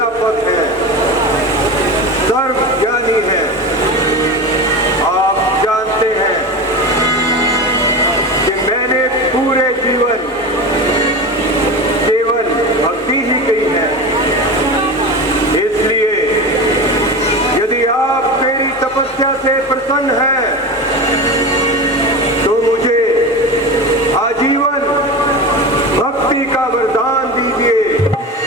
है, सर्वज्ञानी है। आप जानते हैं कि मैंने पूरे जीवन केवल भक्ति ही की है। इसलिए यदि आप मेरी तपस्या से प्रसन्न हैं तो मुझे आजीवन भक्ति का वरदान दीजिए।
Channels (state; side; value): normal; both; correlation 0.26